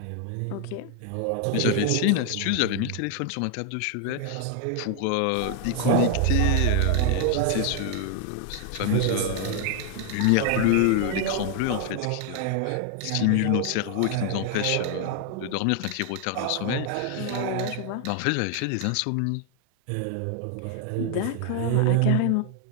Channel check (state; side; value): different; both; correlation 0.00